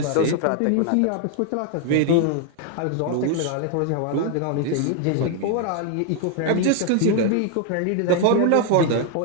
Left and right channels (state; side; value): different; both; correlation 0.00